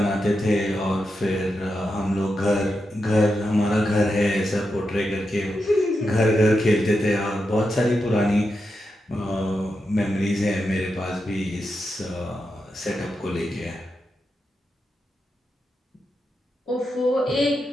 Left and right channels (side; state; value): both; normal; correlation 0.87